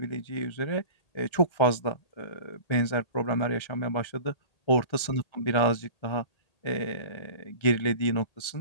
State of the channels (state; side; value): late; right; 1.3 ms